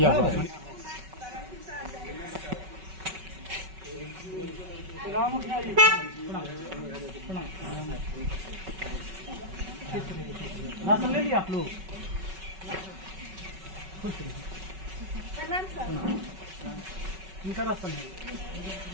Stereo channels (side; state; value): left; late; 5.3 ms